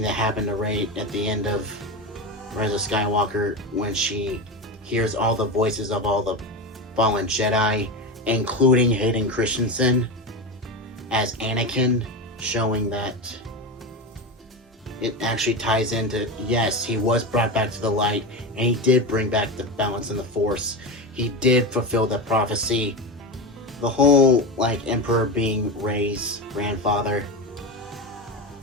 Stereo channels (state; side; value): normal; both; correlation 0.19